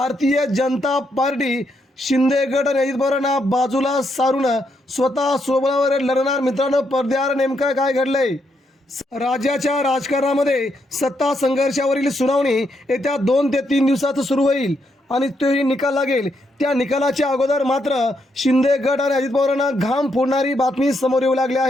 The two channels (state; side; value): normal; both; correlation 0.78